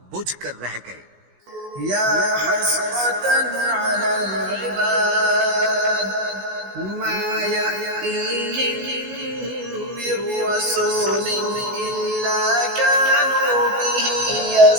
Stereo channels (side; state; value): left; late; 17 ms